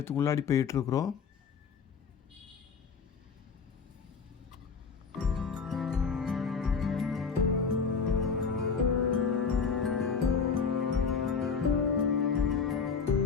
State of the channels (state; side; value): quieter; right; 5.6 dB